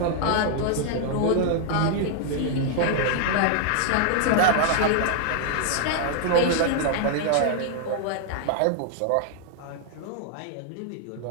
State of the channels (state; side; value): different; both; correlation 0.00